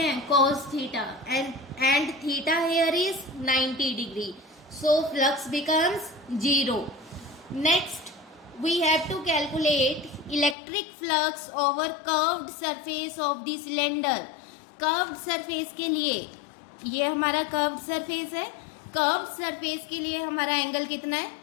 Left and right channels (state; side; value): drops out; right; at 10.6 s